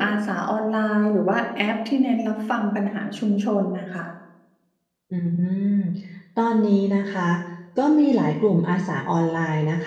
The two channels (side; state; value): both; identical; correlation 1.00